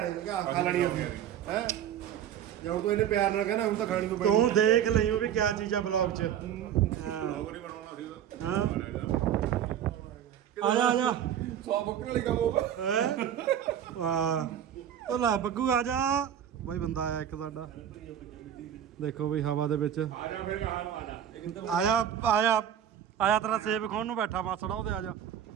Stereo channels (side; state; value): left; quieter; 9.9 dB